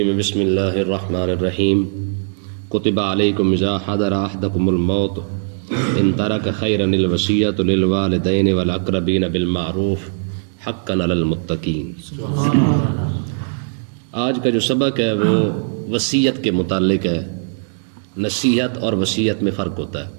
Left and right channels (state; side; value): silent; left; digital silence